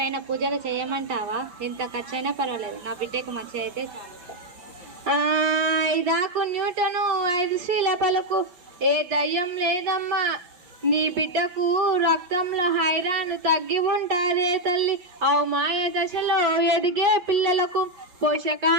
పూజలు చేయమంటావా? ఎంత ఖర్చైనా పర్వాలేదు, నా బిడ్డకు మంచి అయితే. ఐదాకు న్యూటను 5 శ్రీల పలుకు, ఏ దయ్యం లేదమ్మా. నీ బిడ్డకు రక్తంలో ఐరన్ తగ్గి ఉంటారే తల్లి. మాయ దశలో ఎదిగే పిల్లలకు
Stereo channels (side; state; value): left; late; 5.6 ms